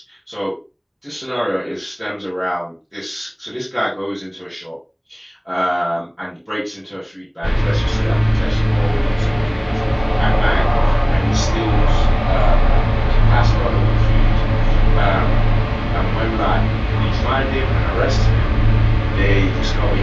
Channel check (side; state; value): both; identical; correlation 1.00